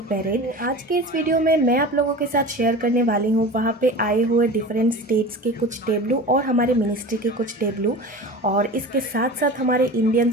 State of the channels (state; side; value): normal; both; correlation 0.34